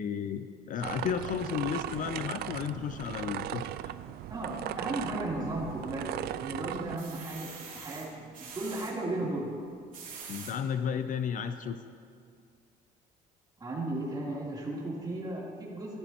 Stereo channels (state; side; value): normal; both; correlation 0.42